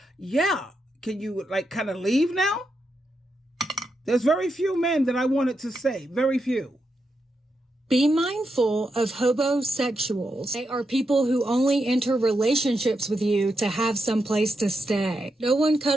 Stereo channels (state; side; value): normal; both; correlation 0.85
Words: Yeah. Can you kind of leave now? There's very few men that I wanted to say. Very few. Be mindful of hobosexuals. They are people who only enter relationships with you to have some place to stay. No one